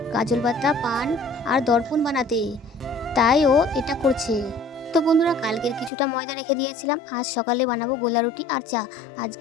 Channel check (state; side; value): drops out; right; at 5.9 s